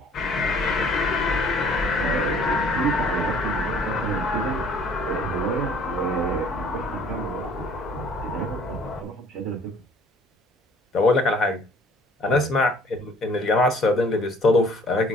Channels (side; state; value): both; normal; correlation 0.55